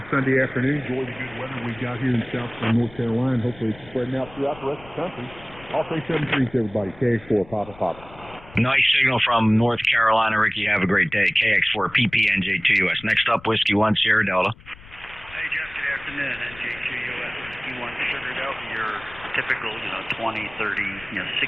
Sunday afternoon. Enjoy the good weather we got here in South North Carolina. Hopefully it's spreading out throughout the rest of the country. I'll say 7-3 to everybody. KX4, Papa Papa. Nice signal from North Carolina, Ricky. Have a great day. KX4, PP, NJ2US. Next up, Whiskey 1, Sierra Delta. Hey, Jeff. Good afternoon. NJ2US, Whiskey 1, Sugar Delta. Your typical, 20, 30,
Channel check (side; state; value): left; noise; rumble, 21 dB below the sound